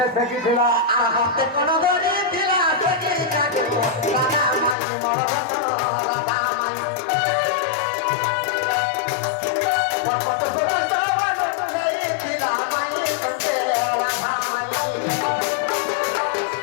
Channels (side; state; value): right; drops out; at 4.8 s